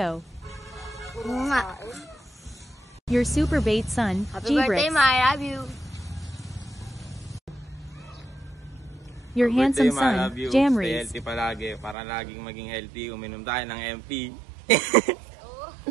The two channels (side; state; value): left; drops out; at 12.0 s